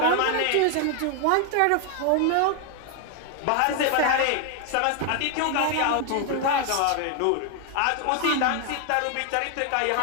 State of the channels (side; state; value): both; different; correlation 0.00